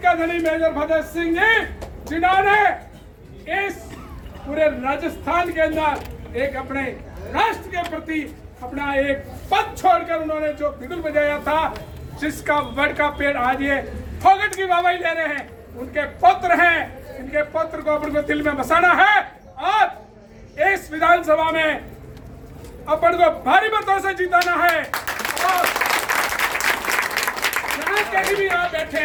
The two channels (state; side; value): identical; both; correlation 1.00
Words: का धनी मेजर भगत सिंह जी, जिन्होंने इस पूरे राजस्थान के अंदर एक अपने राष्ट्र के प्रति अपना एक पद छोड़कर उन्होंने जो बिगुल बजाया था, जिसका वड का पेड़ आज ये फोगट की वाहवाही ले रहे हैं, उनके पुत्र हैं। इनके पुत्र को अपन को दिल में बसाना है और इस विधानसभा में अपन को भारी मतों से जिताना है। और जहां कहीं भी आप बैठे,